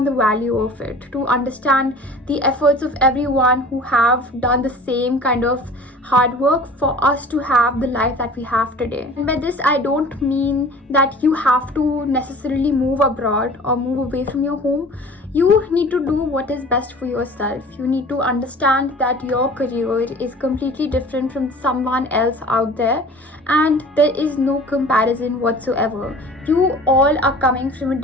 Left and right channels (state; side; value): normal; both; correlation 0.44